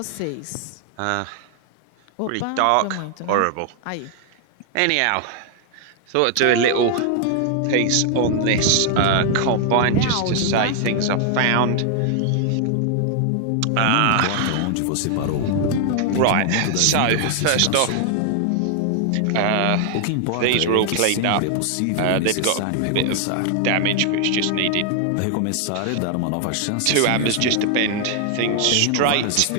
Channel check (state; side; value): different; both; correlation 0.00